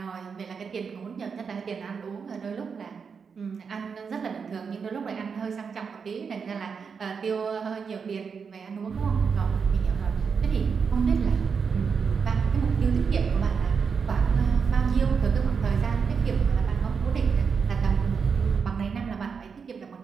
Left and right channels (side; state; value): left; quieter; 5.9 dB